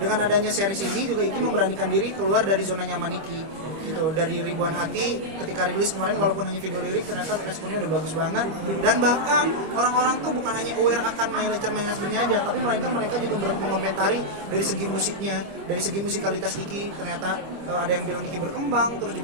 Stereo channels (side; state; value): left; late; 25 ms